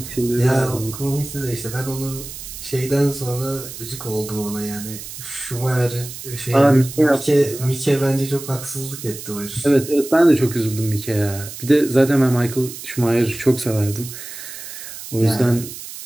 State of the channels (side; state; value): right; noise; hiss, 11 dB below the sound